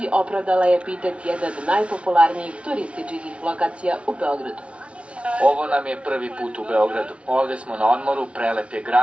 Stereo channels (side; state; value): left; late; 0.061 ms